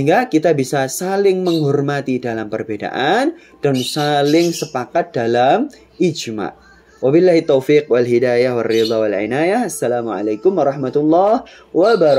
kita bisa saling menghormati dalam perbedaan dan saling sepakat dalam ijma. Wabillahi taufiq wal hidayah wal ridha wal inayah. Assalamualaikum warahmatullahi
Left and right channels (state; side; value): identical; both; correlation 1.00